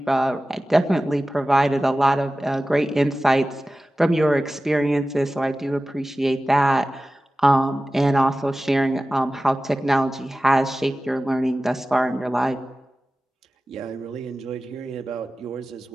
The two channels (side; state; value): both; normal; correlation 0.96